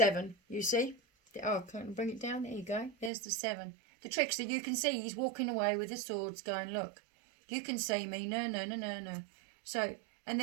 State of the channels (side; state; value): left; drops out; at 3.1 s